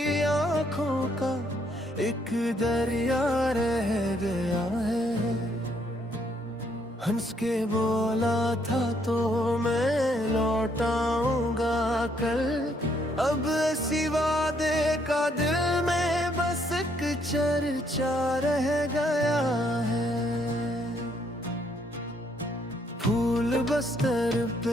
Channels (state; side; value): normal; both; correlation 0.70